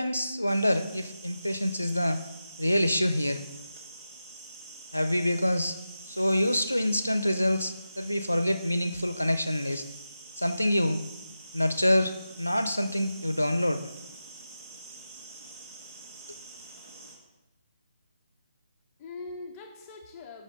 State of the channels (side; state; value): both; inverted; correlation -0.92